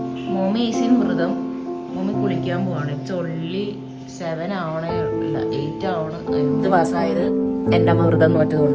Mommy ഈസിൻ വ്രതം. മോമി കുളിക്കാൻ പോവാണ്. ഇറ്റ്സ് ഓൺലി 7 ആവണേ, ഇല്ല 8 ആവണം. എന്ത് പാസ്സായത് എൻ്റെ അമ്മ വ്രതം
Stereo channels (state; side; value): identical; both; correlation 1.00